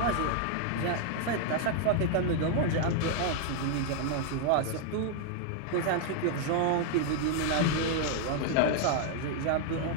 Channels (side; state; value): both; different; correlation 0.00